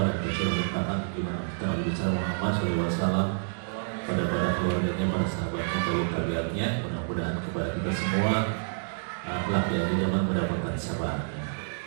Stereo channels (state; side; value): silent; left; digital silence